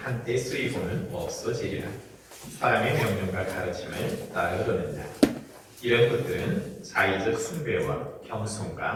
쓰이고는 없어지리라. 사람의 명령과 가르침을 따르려는다. 이런 것들은 자의적 숭배와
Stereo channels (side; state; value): both; identical; correlation 1.00